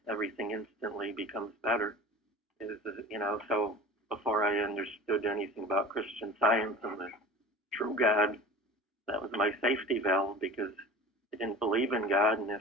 everything instantly becomes better is, so before I understood anything about Christian Science and the true God, that was my safety valve because I didn't believe in God, and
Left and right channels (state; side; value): normal; both; correlation 0.38